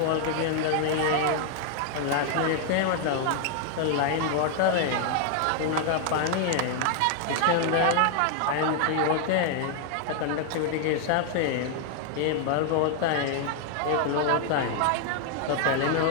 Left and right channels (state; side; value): different; both; correlation 0.00